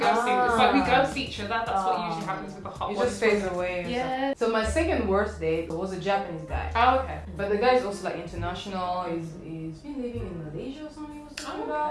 It's like we ghost each other. That's what usually happens with the hot You ones. just phase away. or Yeah. something. So my second worst date was a Japanese guy. Oh, okay. But the guy is also like international. He's been living in Malaysia or something. He was talking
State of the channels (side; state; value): both; identical; correlation 1.00